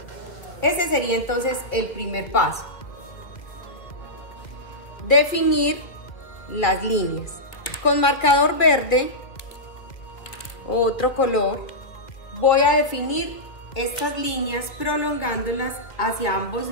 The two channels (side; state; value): right; late; 1.8 ms